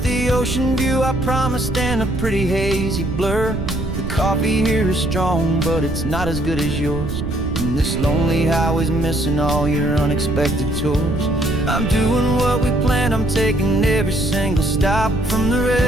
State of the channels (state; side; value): noise; right; rumble, 5 dB below the sound